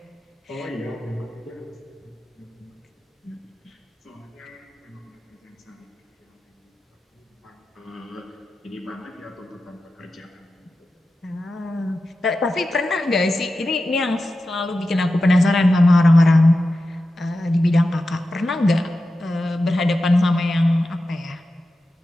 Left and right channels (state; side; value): normal; both; correlation 0.92